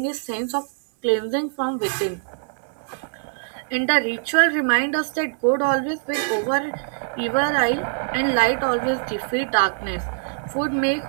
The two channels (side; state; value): left; silent; digital silence